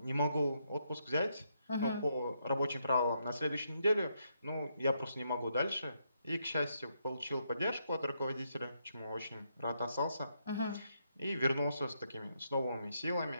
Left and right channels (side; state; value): both; inverted; correlation -0.78